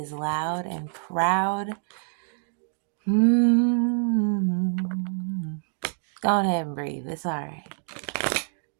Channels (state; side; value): silent; left; 57 dB below the other